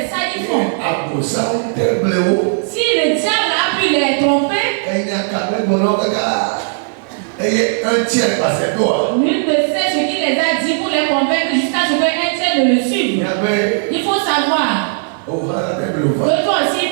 ça qu'ils font. Si le diable a pu les tromper, nul ne sait ce qu'il les a dit pour les convaincre jusqu'à ce qu'un tiers ne le suive. Il faut savoir que toi aussi il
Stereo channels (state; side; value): silent; left; 69 dB below the other